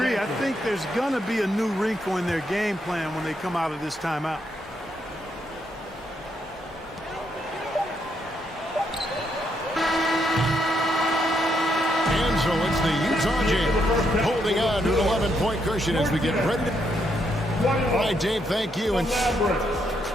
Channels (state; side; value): normal; both; correlation 0.77